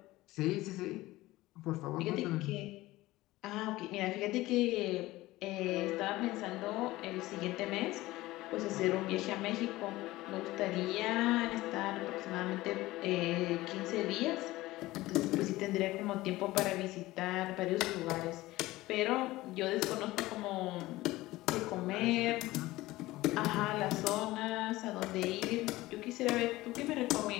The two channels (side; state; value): right; quieter; 18.2 dB